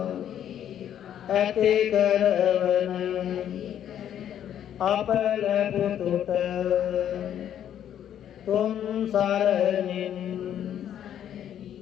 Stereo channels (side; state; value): right; quieter; 10.2 dB